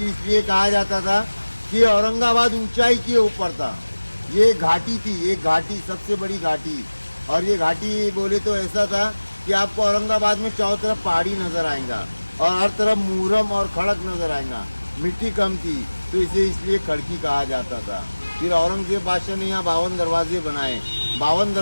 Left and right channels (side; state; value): both; inverted; correlation -1.00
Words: इसलिए कहा जाता था कि औरंगाबाद ऊंचाई के ऊपर था। ये घाटी थी, एक घाटी, सबसे बड़ी घाटी। और ये घाटी बोले तो ऐसा था कि आपको औरंगाबाद में चारों तरफ पहाड़ी नजर आएगा और हर तरफ मुहर्रम और खड़क नजर आएगा। मिट्टी कम थी तो इसे इसलिए खड़की कहा जाता था। फिर औरंगजेब बादशाह ने यहाँ 52 दरवाजे बनाए। 52